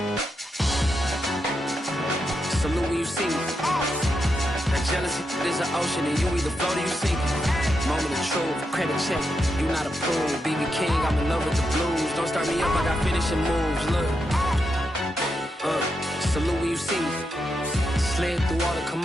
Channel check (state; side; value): normal; both; correlation 0.85